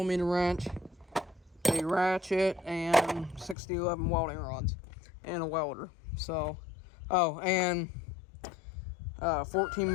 wrench, a ratchet, and 6011 welding rods, and a welder. And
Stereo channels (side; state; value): right; drops out; at 3.6 s